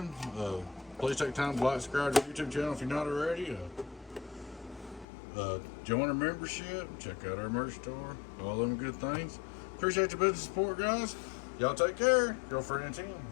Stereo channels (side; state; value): right; drops out; at 5.1 s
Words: Please take time to like and subscribe to our YouTube channel if you're not already. Join our membership. Check out our merch store. All them good things. Appreciate your business support, guys. Y'all take care. Girlfriend and team.